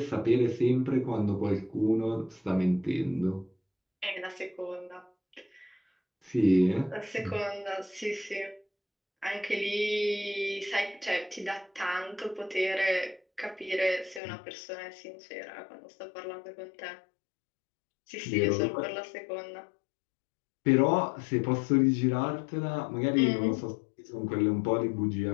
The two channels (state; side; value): drops out; right; at 14.2 s